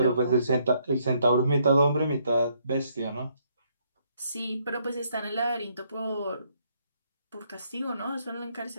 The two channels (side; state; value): both; inverted; correlation -0.71